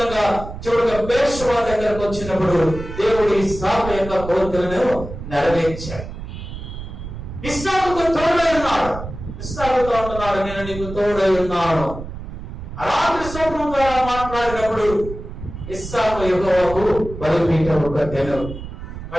చివరిగా బేర్షెబా దగ్గరకు వచ్చినప్పుడు దేవుడు ఇస్సాకు యొక్క కోరికలను నెరవేర్చాడు. ఇస్సాకుకు తోడై ఉన్నాడు. ఇస్సాకుతో అంటున్నాడు, నేను నీకు తోడై ఉన్నాను. రాత్రి స్వప్నం ద్వారా మాట్లాడినప్పుడు ఇస్సాకు యెహోవాకు బలిపీఠము కట్టెను.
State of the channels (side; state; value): right; noise; rumble, 10 dB below the sound